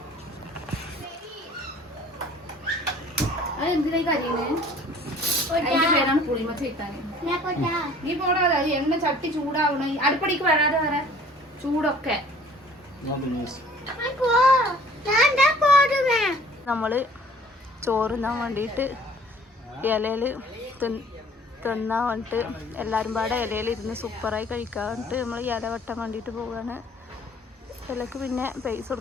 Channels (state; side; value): normal; both; correlation 0.53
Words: അത് എന്തിനായി കരിയുന്നത്? അതിന്റെ പേരാണ് പുളിമച്ച ഇട്ടാന്. നീ പോടാതെ. അത് എണ്ണ ചട്ടി ചൂടാവണ അടുപ്പടിക്ക് വരാതെ വരെ ചൂടൊക്കെ. നമ്മള് ചോറുന്നാൻ വേണ്ടിയിട്ട് ഇലയിൽ തിന്നാൻ വേണ്ടിയിട്ട് എല്ലാവരും പാടെ ഇലയിൽ ഇരുന്ന് സൂപ്പറായി കഴിക്കാൻ വേണ്ടിയിട്ട് നമ്മൾ ഇല വെട്ടാൻ വേണ്ടിയിട്ട് പോവുകയാണ്. ഇലക്ക് പിന്നെ പൈസ